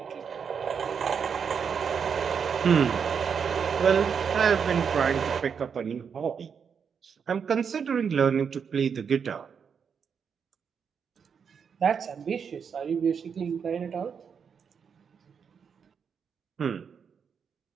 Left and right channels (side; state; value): left; quieter; 6.7 dB